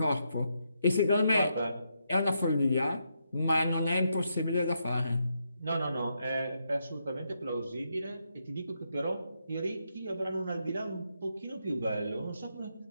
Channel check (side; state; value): both; inverted; correlation -0.81